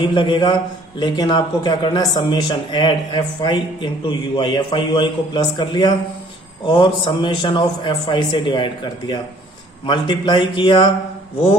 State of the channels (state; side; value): normal; both; correlation 0.57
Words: लगेगा, लेकिन आपको क्या करना है, summation add fi into ui, fi ui को प्लस कर लिया और समेशन ऑफ fi से डिवाइड कर दिया, मल्टीप्लाई किया